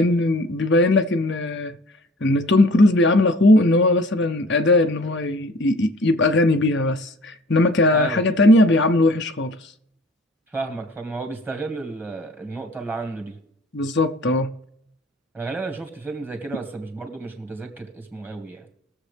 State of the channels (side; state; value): both; normal; correlation 0.50